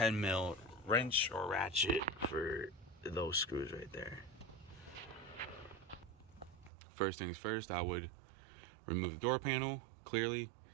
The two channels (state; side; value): drops out; left; at 6.7 s